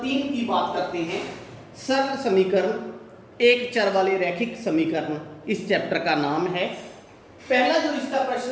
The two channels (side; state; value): both; identical; correlation 1.00